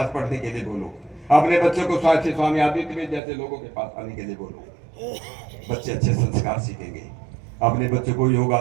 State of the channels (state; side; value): drops out; left; at 3.2 s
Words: पढ़ने के लिए बोलो, अपने बच्चों को स्वामी आदित्य जैसे लोगों के पास आने के लिए बोलो। बच्चे अच्छे संस्कार सीखेंगे। अपने बच्चों को